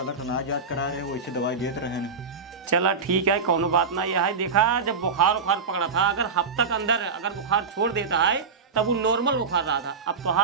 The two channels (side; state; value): left; quieter; 4.9 dB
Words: ना जांच करा रहे, वैसे दवाई देते रहे। चला ठीक है, कोनो बात ना। यह है देखा जब बुखार पकड़ा था, अगर हफ्ता के अंदर अगर बुखार छोड़ देता है तब वो नॉर्मल बुखार रहा था। अब तो